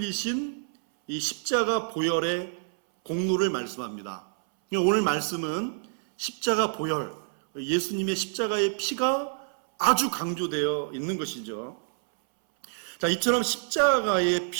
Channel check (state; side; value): silent; left; 60 dB below the other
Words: 이 십자가 보혈의 공로를 말씀합니다. 오늘 말씀은 십자가 보혈, 예수님의 십자가의 피가 아주 강조되어 있는 것이죠. 자, 이처럼 십자가의